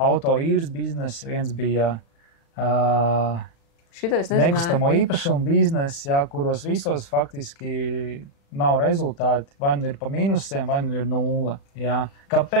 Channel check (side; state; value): right; late; 36 ms